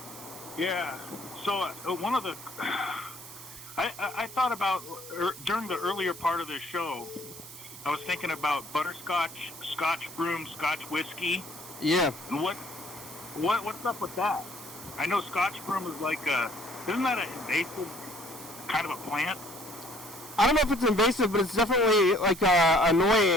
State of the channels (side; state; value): right; noise; hiss, 15 dB below the sound